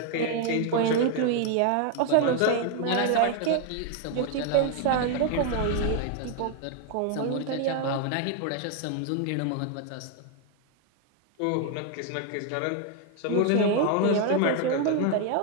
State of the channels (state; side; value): different; both; correlation 0.01